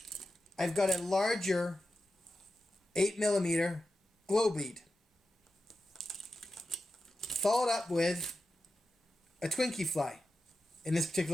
I've got a larger 8mm glow bead, followed up with a Twinkie fly. In this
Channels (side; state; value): both; normal; correlation 0.92